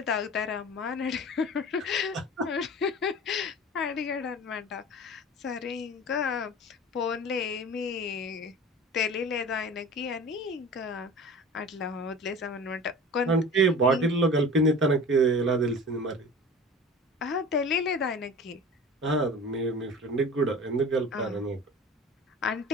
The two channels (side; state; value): both; normal; correlation 0.38